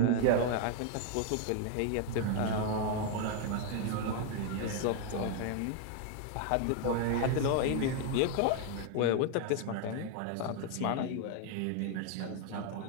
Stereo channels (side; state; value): both; different; correlation 0.00